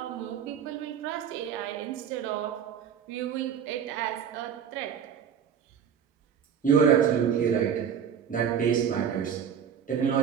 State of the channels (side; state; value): left; quieter; 7.9 dB